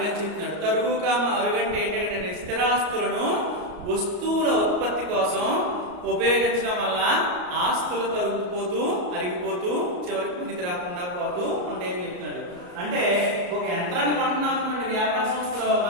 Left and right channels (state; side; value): late; left; 33 ms